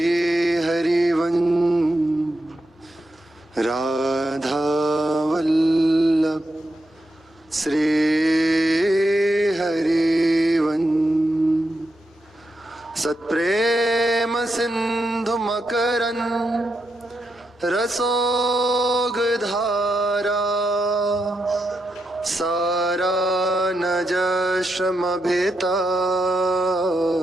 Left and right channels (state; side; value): normal; both; correlation 0.85